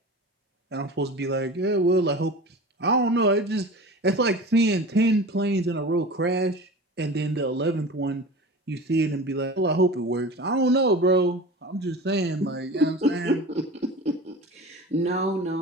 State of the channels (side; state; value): both; normal; correlation 0.34